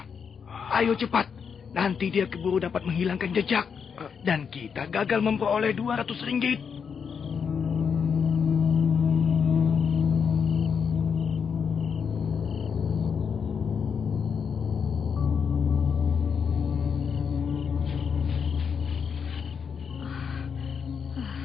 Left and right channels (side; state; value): right; quieter; 6.5 dB